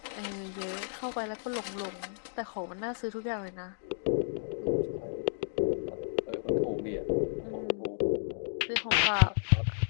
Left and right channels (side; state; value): right; silent; digital silence